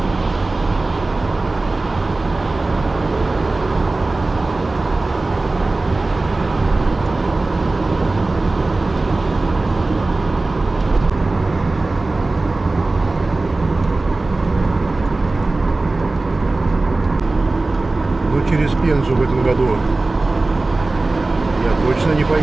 Через Пензу в этом году я точно не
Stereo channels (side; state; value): left; quieter; 3.2 dB